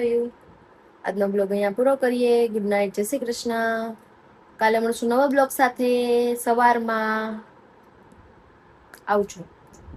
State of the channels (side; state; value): both; identical; correlation 1.00